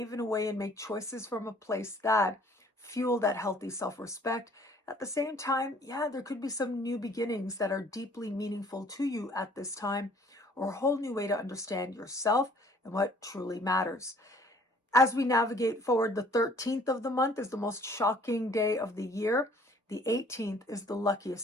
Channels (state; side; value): normal; both; correlation 0.56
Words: in a way and make choices from a place that fuel that healthy self-respect. At the same time, there could be some new beginnings that are deeply meaningful to you at this time, or a whole new way to understand yourself and what truly matters. As we navigate forward, the 13th of the month is the most shocking day of the year. The 18th is the